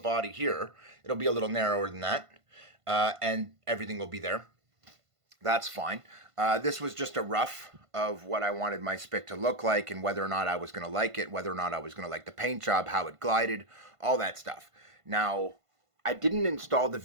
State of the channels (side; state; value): left; late; 1.5 ms